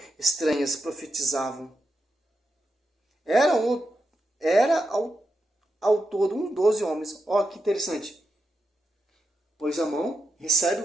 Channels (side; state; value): both; normal; correlation 0.86